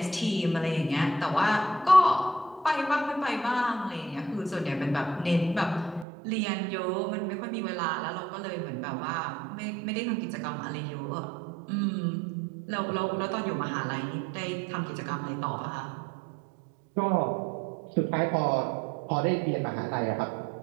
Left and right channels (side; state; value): left; drops out; at 6.1 s